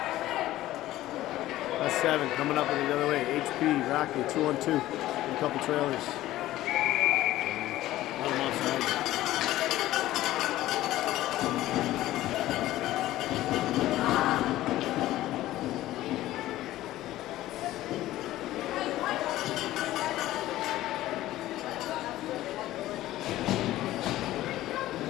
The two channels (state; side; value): quieter; right; 15.2 dB